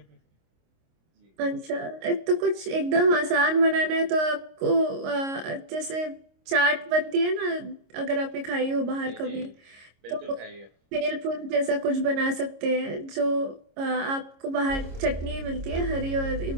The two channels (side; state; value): left; late; 26 ms